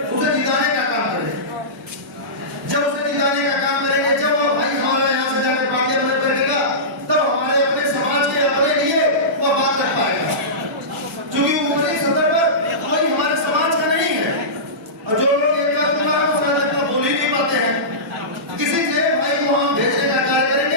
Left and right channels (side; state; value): both; normal; correlation -0.19